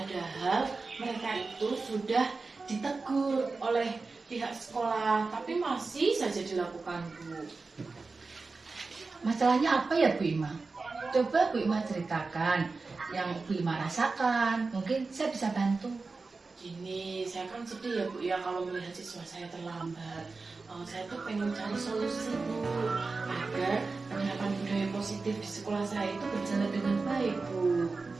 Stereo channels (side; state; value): left; quieter; 4.0 dB